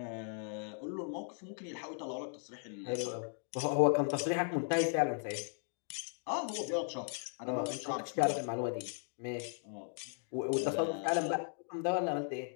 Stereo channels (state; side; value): silent; right; 53 dB below the other